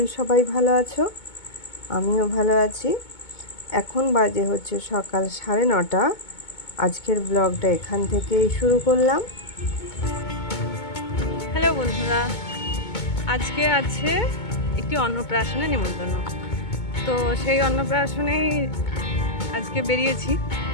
সবাই ভালো আছো, আমিও ভালো আছি। এখন বাজে হচ্ছে সকাল 9:30। আজকের ব্লগটা এখান থেকেই শুরু করলাম। হ্যালো বন্ধুরা, আজকে আছে একটি অন্নপ্রাশনে নিমন্ত্রণ। তো সেই অন্নপ্রাশনেই আজকে বেরিয়েছি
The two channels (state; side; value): late; right; 2.2 ms